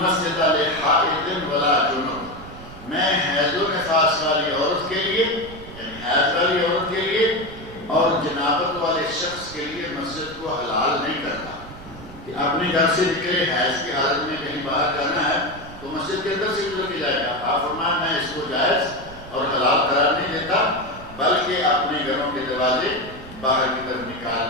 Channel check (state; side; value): noise; right; rumble, 16 dB below the sound